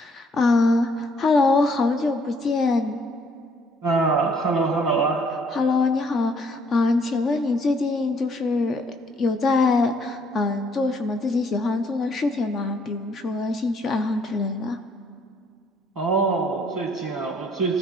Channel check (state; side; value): normal; both; correlation 0.66